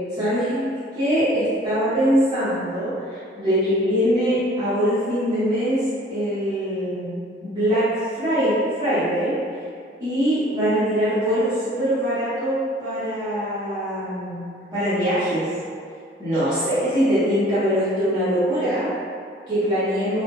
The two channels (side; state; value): both; normal; correlation 0.51